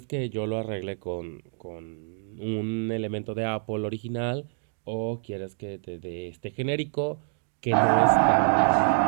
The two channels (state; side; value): silent; left; 60 dB below the other